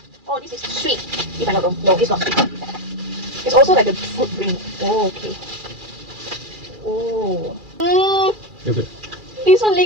Oh, this is sweet. If I'm not wrong. No, it's not sweet. It's also like a fruit drink. Oh, okay. Oh. Yogurt. This one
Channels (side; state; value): left; late; 2.4 ms